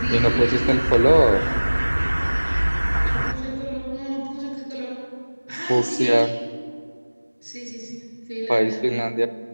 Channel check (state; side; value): inverted; both; correlation -1.00